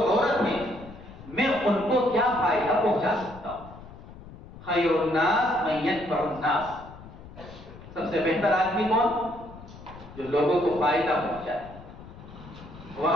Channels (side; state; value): left; noise; rumble, 17 dB below the sound